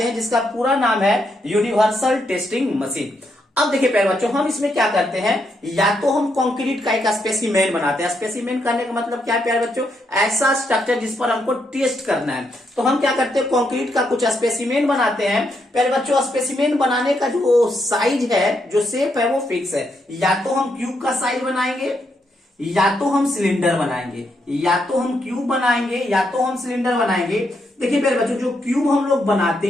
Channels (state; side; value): normal; both; correlation 0.79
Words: हैं, जिसका पूरा नाम है यूनिवर्सल टेस्टिंग मशीन। अब देखिए प्यारे बच्चों, हम इसमें क्या करते हैं? या तो हम कंक्रीट का एक स्पेसिमेन बनाते हैं। स्पेसिमेन करने का मतलब क्या है प्यारे बच्चों? ऐसा स्ट्रक्चर जिस पर हमको टेस्ट करना है। तो हम क्या करते हैं? कंक्रीट का कुछ स्पेसिमेन बनाते हैं। प्यारे बच्चों, स्पेसिमेन बनाने का जो साइज है, जो शेप है, वो फिक्स है। या तो हम क्यूब का साइज बनाएंगे, या तो हम सिलेंडर बनाएंगे, या तो हम क्यूब बनाएंगे, या तो हम सिलेंडर बनाएंगे। देखिए प्यारे बच्चों, जो क्यूब हम लोग बनाते